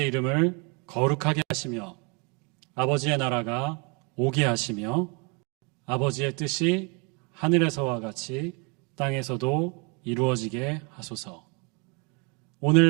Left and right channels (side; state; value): left; quieter; 32.4 dB